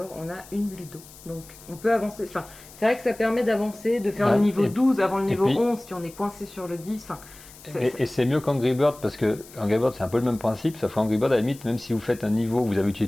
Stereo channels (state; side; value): noise; left; hiss, 20 dB below the sound